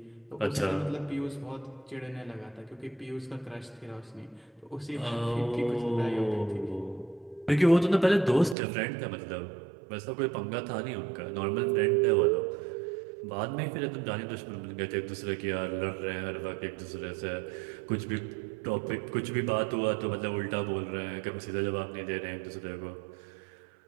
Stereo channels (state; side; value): drops out; left; at 8.6 s